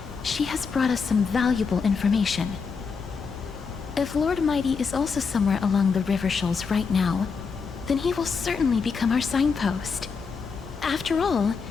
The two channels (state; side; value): quieter; right; 5.4 dB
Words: she has brought us some valuable information. If Lord Mighty is also somewhere along the river shoals right now, then he will certainly become our signpost. After all,